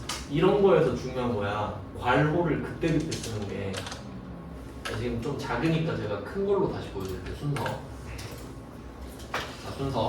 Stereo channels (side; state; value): both; identical; correlation 1.00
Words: 이런 거에서 중요한 거야. 괄호를 그때그때 쓰는 게. 지금 좀 작으니까 제가 큰 걸로 다시 보여드릴게요. 순서. 자,